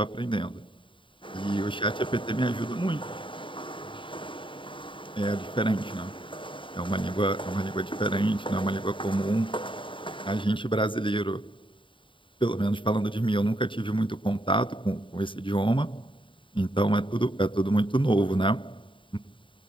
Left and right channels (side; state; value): right; late; 0.24 ms